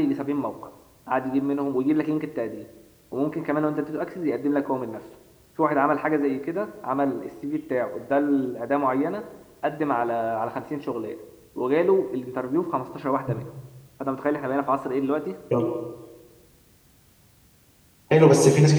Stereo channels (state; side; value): identical; both; correlation 1.00